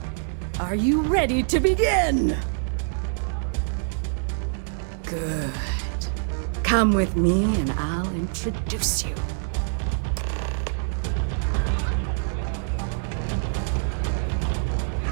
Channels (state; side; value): silent; left; 62 dB below the other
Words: are you ready to begin? Good. Come with me and I'll introduce you.